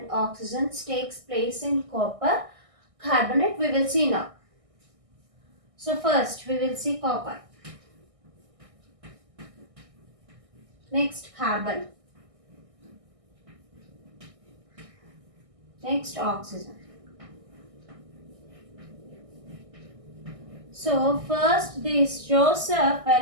oxygen takes place in copper carbonate? We will see now. So first we will see copper. Next carbon. Next oxygen. So first this Joseph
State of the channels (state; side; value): late; left; 1.6 ms